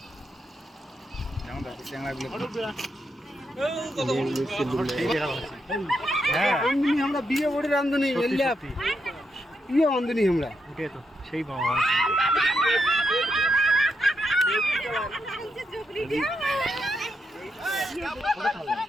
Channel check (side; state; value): both; normal; correlation 0.82